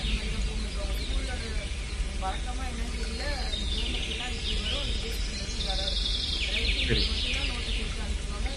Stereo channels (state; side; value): identical; both; correlation 1.00